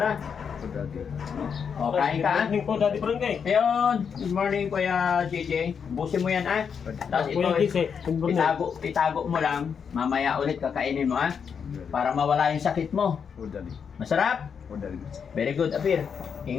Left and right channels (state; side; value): quieter; right; 6.8 dB